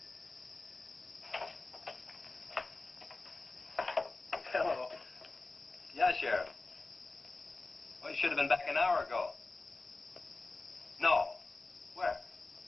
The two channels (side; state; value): right; quieter; 3.4 dB